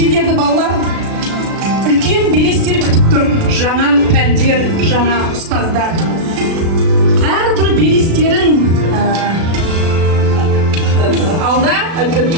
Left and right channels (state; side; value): late; left; 36 ms